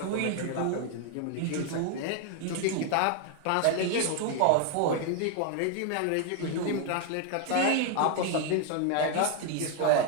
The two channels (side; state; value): both; different; correlation 0.01